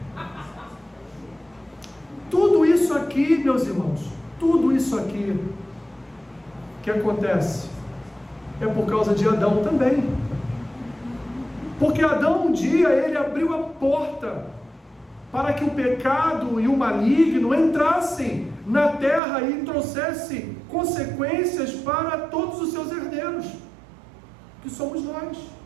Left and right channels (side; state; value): left; drops out; at 19.2 s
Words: Tudo isso aqui, meus irmãos, tudo isso aqui que acontece é por causa de Adão também. Porque Adão um dia ele abriu a porta para que o pecado e o maligno entrassem na terra e trouxessem consequências para todos os seus herdeiros, que somos nós.